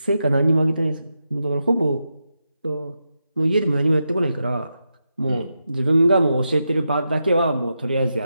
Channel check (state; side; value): inverted; both; correlation -0.87